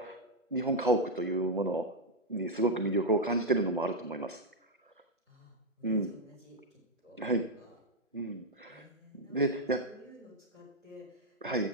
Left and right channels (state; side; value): normal; both; correlation 0.01